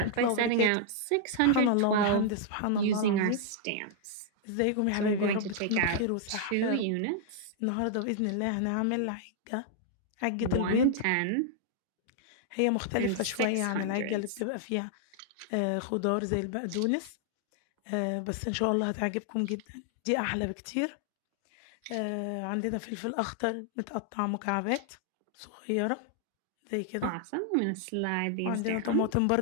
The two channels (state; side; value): different; both; correlation -0.01